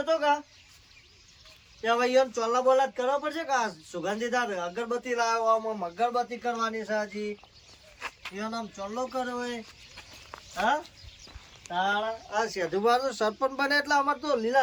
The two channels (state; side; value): identical; both; correlation 1.00